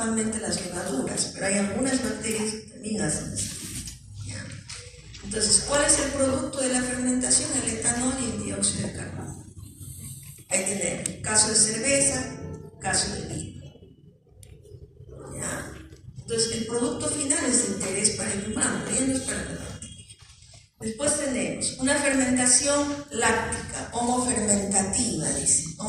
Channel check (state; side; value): identical; both; correlation 1.00